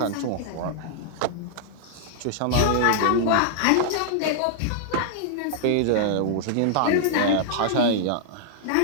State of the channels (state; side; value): different; both; correlation -0.01